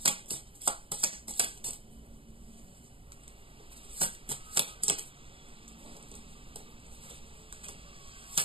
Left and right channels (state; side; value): late; left; 0.26 ms